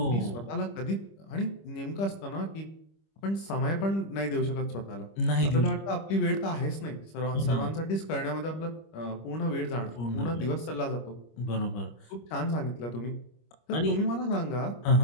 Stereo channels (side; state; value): right; late; 25 ms